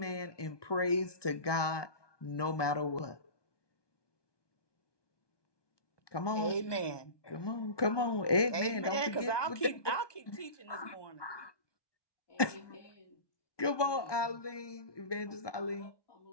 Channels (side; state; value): right; late; 1.2 ms